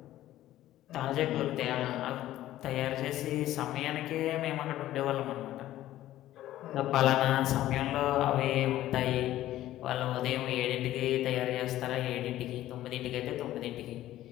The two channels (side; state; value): right; quieter; 14.0 dB